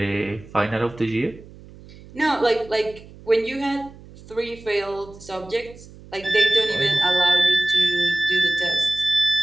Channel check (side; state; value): right; noise; hum, 20 dB below the sound